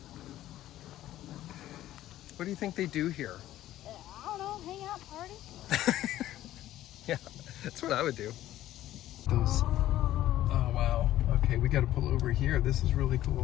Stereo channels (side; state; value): right; quieter; 13.8 dB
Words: What do you think they do here? I don't know, hang out, party. Yeah, that's what I would do. Oh, wow. Okay, we got to pull over here. This is really